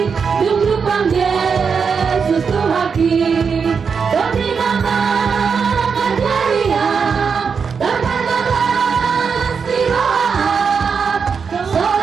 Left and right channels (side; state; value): left; quieter; 5.9 dB